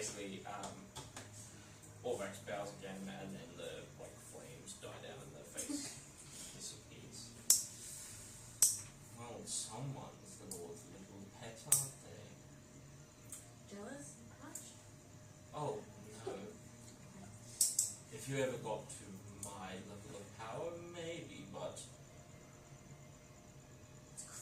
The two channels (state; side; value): identical; both; correlation 1.00